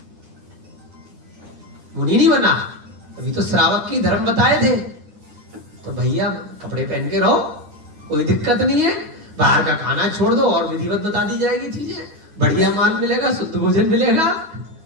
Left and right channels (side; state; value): left; late; 9.5 ms